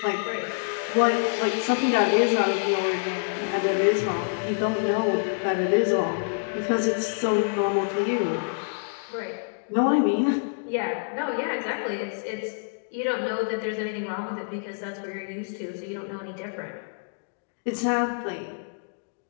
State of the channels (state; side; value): silent; right; digital silence